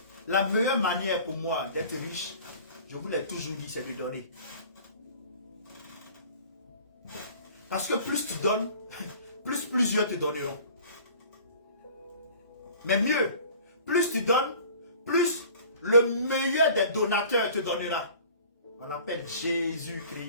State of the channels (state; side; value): inverted; both; correlation -0.47